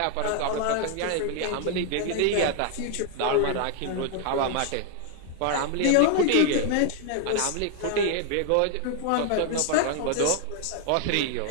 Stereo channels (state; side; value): different; both; correlation 0.00